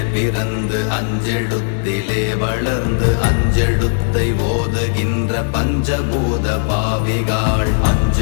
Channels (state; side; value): silent; right; digital silence